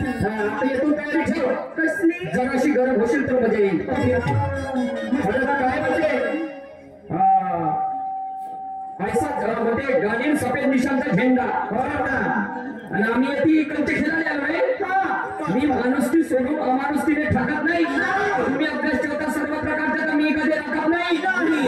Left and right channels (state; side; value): identical; both; correlation 1.00